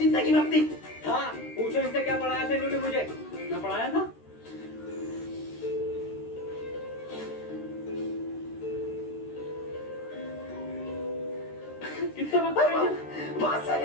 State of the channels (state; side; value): late; right; 13 ms